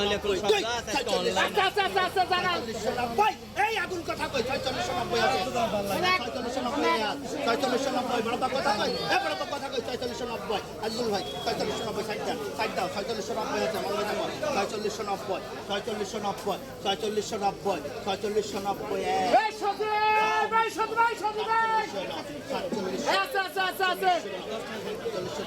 4690 এই আগুন কথা কই 4690 আছে 4690 বড় কথা কই বড় কথা কই 4690 আজুল ভাই 4690 সাইড দাও 4690 আছে মনে রাখো 4690 এই সাথে ভাই আছে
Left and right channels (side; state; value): left; noise; hum, 27 dB below the sound